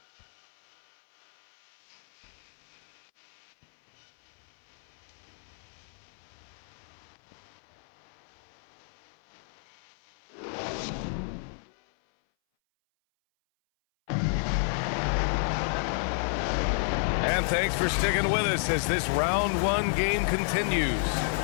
And thanks for sticking with us as this round 1 game continues.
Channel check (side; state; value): right; silent; 57 dB below the other